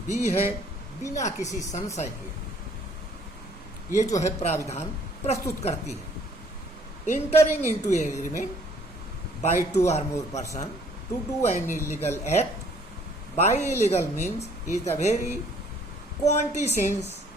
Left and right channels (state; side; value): normal; both; correlation 0.60